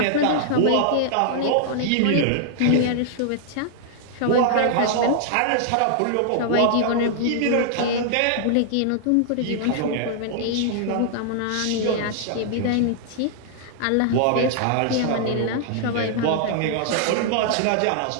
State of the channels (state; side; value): different; both; correlation -0.01